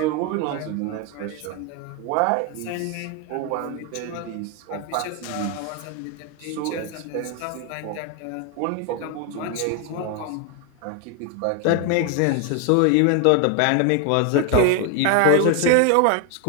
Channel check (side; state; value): both; different; correlation 0.01